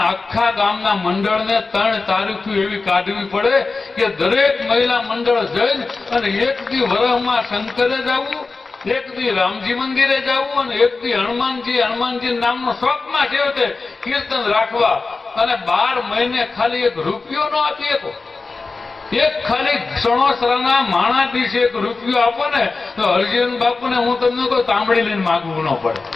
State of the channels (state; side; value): quieter; right; 4.0 dB